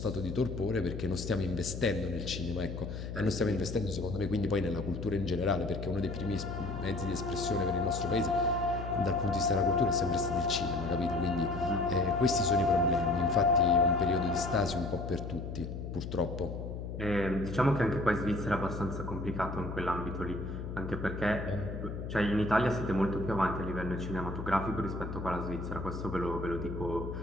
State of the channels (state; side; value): noise; left; hum, 7 dB below the sound